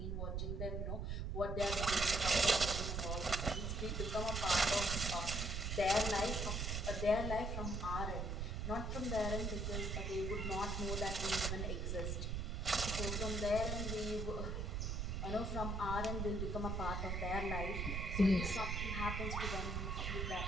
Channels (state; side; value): noise; right; rumble, 1 dB below the sound